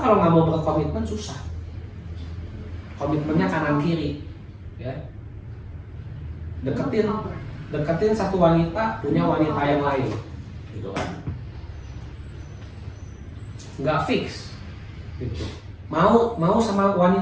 kalau nggak mau berkomitmen susah. Komitmennya kanan kiri, ya. Deketin satu wanita, punya wanita yang lain, gitu kan? Nggak fix, gitu. Mau sama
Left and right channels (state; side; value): identical; both; correlation 1.00